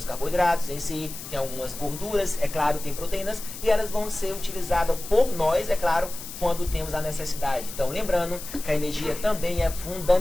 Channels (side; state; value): left; noise; hiss, 11 dB below the sound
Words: carboidratos em si, tem algumas gorduras, é claro, tem proteínas, e elas vão ser utilizadas por nós, é claro, quando temos a necessidade. Então, lembrando que a energia também é